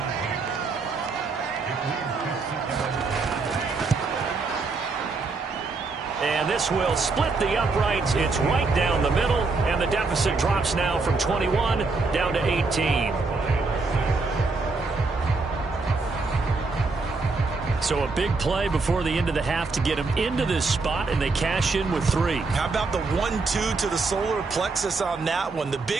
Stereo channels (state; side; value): quieter; left; 3.9 dB